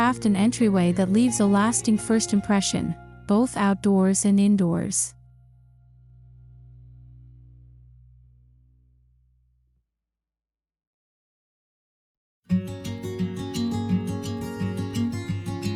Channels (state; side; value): identical; both; correlation 1.00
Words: an entryway that leaves a lasting first impression, both outdoors and indoors.